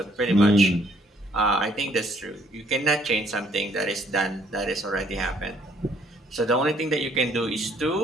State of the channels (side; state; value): both; normal; correlation 0.65